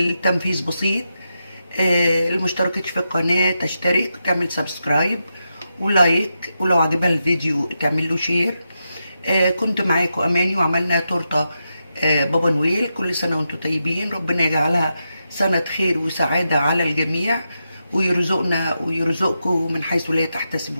بسيط. المشتركتش في القناة تشترك وتعمل سبسكرايب ولايك، ولو عجبها الفيديو تعمل له شير. كنت معاكم اماني وعملنا تورته بابا نويل. كل سنه وانتم طيبين، ربنا يجعلها سنه خير وسعاده على الجميع، ويرزقنا ويرزقكم من حيث لا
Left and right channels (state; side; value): inverted; both; correlation -0.87